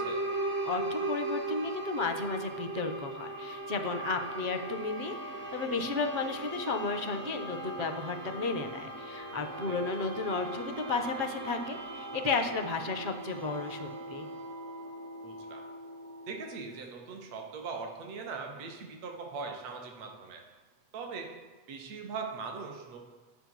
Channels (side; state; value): left; late; 8.0 ms